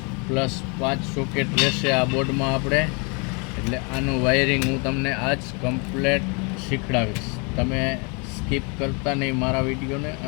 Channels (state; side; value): quieter; right; 33.1 dB